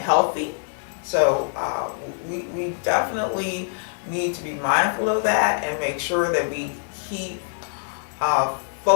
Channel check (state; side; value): silent; right; digital silence